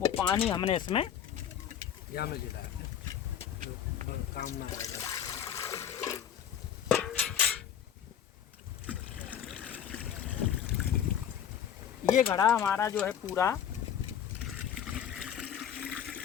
वो पानी हमने इसमें ये घड़ा हमारा जो है पूरा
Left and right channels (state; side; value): quieter; right; 9.1 dB